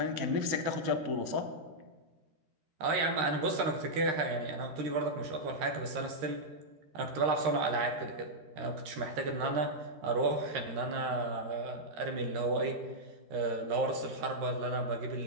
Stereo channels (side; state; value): left; late; 13 ms